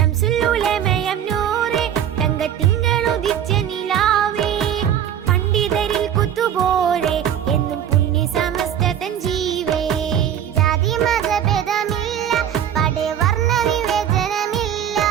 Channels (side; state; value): left; quieter; 9.7 dB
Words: ഉലമയം നൂറെ തങ്കത്തിങ്കളുദിച്ച നിലാവേ പണ്ഡിതരിൽ കുത്തുപോലെ എന്നും പുണ്യ സമസ്ത തൻ ജീവേ. ജാതി മതഭേദമില്ല പടവർണ്ണ വിവേചനമില്ല